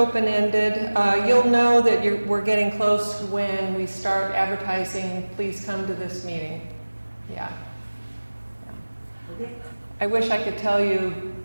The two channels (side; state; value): both; inverted; correlation -1.00